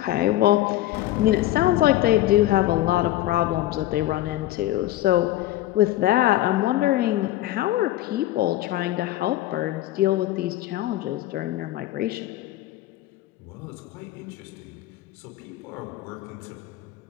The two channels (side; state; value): right; quieter; 15.1 dB